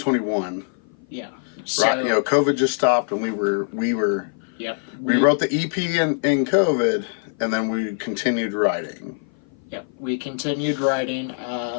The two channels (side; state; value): right; silent; 56 dB below the other